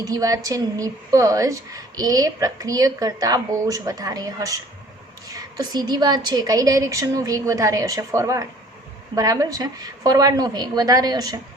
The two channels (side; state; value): both; normal; correlation 0.53